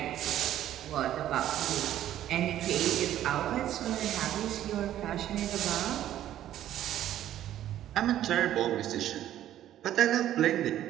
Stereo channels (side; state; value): left; quieter; 12.1 dB